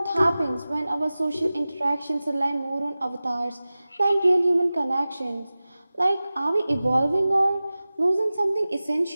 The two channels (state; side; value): inverted; both; correlation -0.97